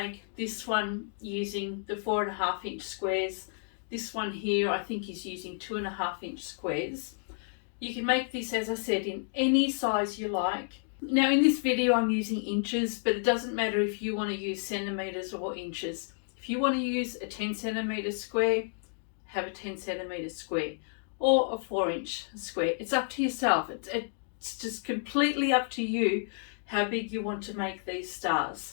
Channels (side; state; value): right; silent; digital silence